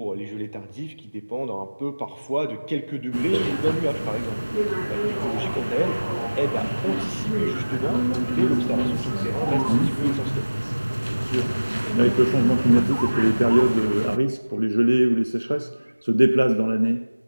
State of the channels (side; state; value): both; inverted; correlation -1.00